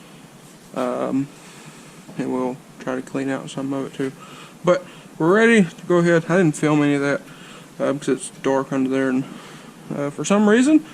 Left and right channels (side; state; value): both; identical; correlation 1.00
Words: and we'll try to clean out some of it too. But we're ready to go ahead. I didn't film any of that because it's dark under there, and for some reason